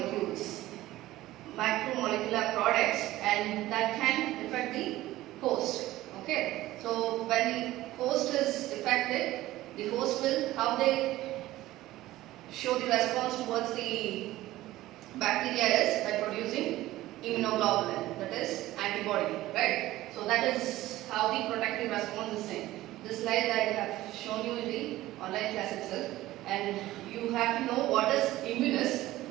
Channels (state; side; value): quieter; left; 16.2 dB